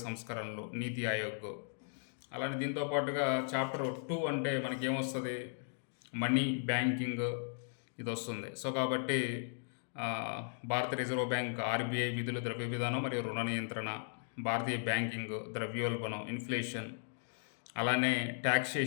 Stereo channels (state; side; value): silent; right; digital silence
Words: సంస్కరణలు, నీతి ఆయోగ్. అలానే దీంతో పాటుగా చాప్టర్ 2 అంటే మనకి ఏమొస్తుంది, మనీ, బ్యాంకింగ్ ఇది వస్తుంది. సో కాబట్టి భారత రిజర్వ్ బ్యాంక్, ఆర్బీఐ విధులు, ద్రవ్య విధానం మరియు రుణ నియంత్రణ, భారతీయ బ్యాంకింగ్, ద్రవ్యోల్బణం, ఇన్ఫ్లేషన్, అలానే